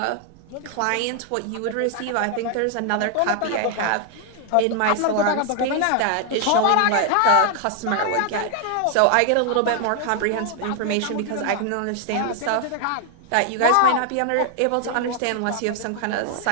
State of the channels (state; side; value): different; both; correlation 0.00